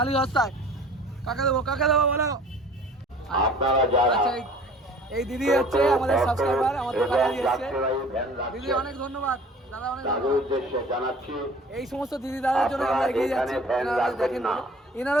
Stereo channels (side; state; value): both; normal; correlation 0.47